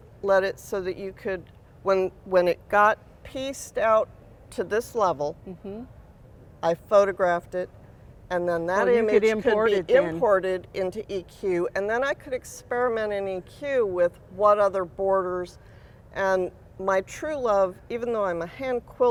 let it so that you could, when it got pieced out to this level, I photographed it, and then that image could be imported into EQ, and then I could experiment in EQ with what other borders. And my true love, even though I'm a hand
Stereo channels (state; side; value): identical; both; correlation 1.00